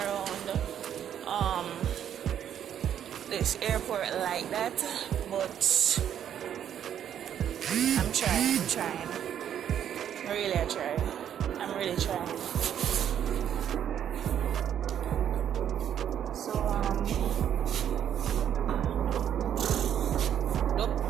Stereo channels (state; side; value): quieter; left; 9.6 dB